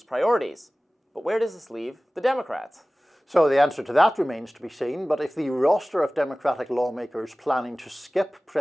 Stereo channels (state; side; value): normal; both; correlation 0.98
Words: priorities. But where does this leave the Democrats? So the answer to that remains to be seen, but if the roster of Democratic lawmakers planning to skip